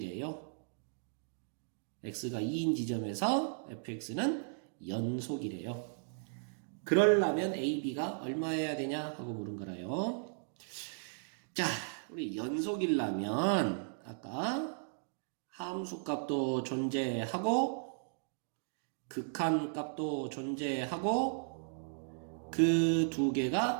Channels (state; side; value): silent; left; digital silence